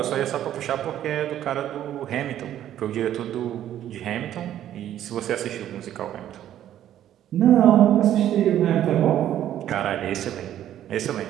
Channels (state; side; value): quieter; left; 11.5 dB